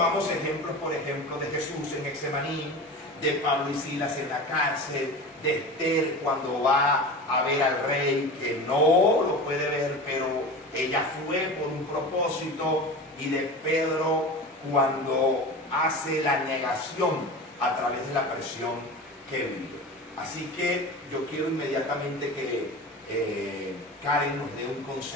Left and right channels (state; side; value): normal; both; correlation 0.32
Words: ejemplos, por ejemplo, de Jesús en Getsemaní, de Pablo y Silas en la cárcel, de Esther cuando va a ver al rey que no lo puede ver, pero ella fue por un propósito, y de Pedro cuando hace la negación a través de la presión que vivió. Así que yo quiero inmediatamente que Karen nos dé un